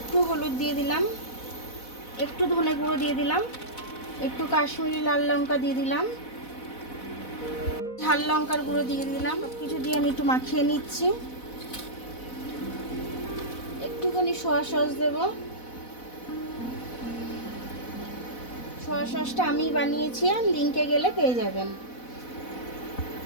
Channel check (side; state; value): right; late; 4.1 ms